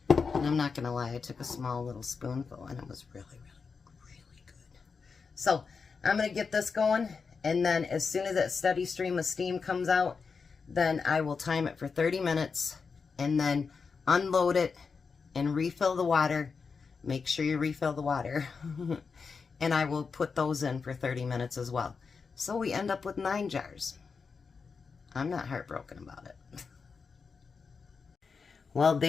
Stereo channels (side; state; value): right; quieter; 5.2 dB